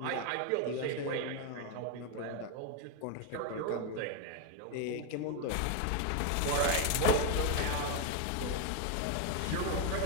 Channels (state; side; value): different; both; correlation 0.01